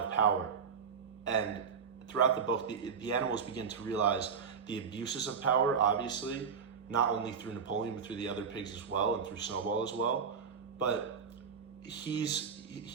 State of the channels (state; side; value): quieter; left; 6.4 dB